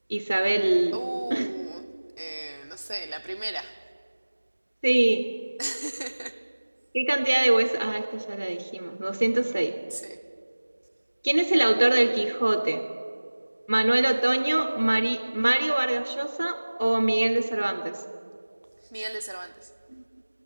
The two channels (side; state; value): both; inverted; correlation -1.00